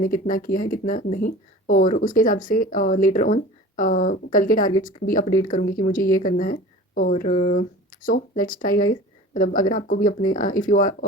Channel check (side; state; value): both; normal; correlation 0.40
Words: कितना किया है कितना नहीं। और उसके हिसाब से लेटर ऑन कल के टारगेट्स भी अपडेट करूँगी कि मुझे ये करना है। और सो लेट्स ट्राई गाइस। मतलब अगर आपको भी अपने इफ़ यू